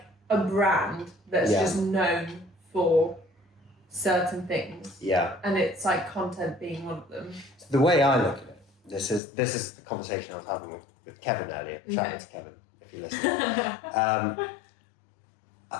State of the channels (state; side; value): drops out; right; at 9.2 s